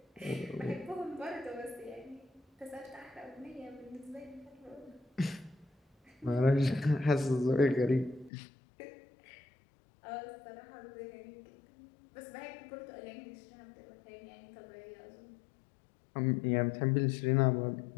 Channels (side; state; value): right; drops out; at 8.3 s